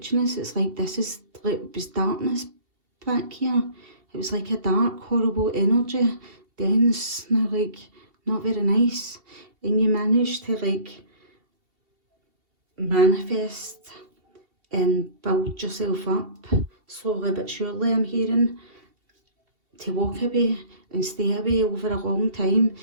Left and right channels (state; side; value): late; left; 2.7 ms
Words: It's like this is like, it was darkness back here. It was like a dark, horrible energy, dense, now like not very nice. And you managed to like manifest and build yourself up slowly but surely, I'm hearing, to walk away and stay away over a long time,